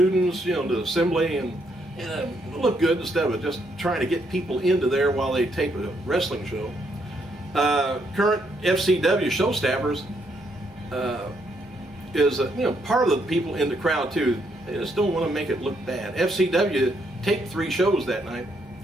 the assembly, and it'll look good instead of just trying to get people into there while they tape a wrestling show. Current FCW show staffers is part of the people in the crowd too. They just don't want to make it look bad. FCW taped 3 shows that night.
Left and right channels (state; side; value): normal; both; correlation 0.74